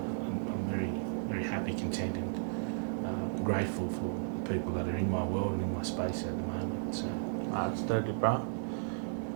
very, very happy, content, and grateful for the people that are in my world and in my space at the moment. So That's totally, bro.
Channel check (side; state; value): left; silent; digital silence